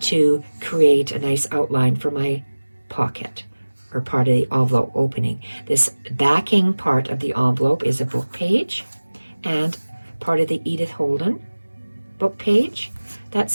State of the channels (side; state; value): both; inverted; correlation -1.00